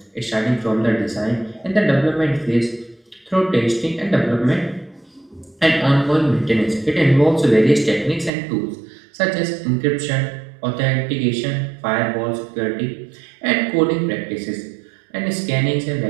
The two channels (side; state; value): left; drops out; at 8.3 s